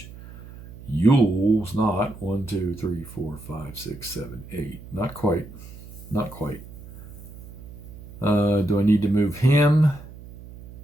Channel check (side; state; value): right; noise; hum, 16 dB below the sound